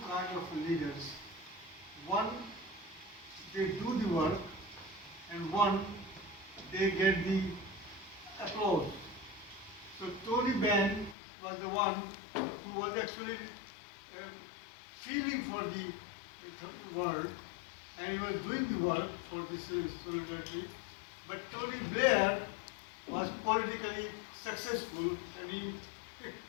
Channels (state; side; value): drops out; right; at 11.2 s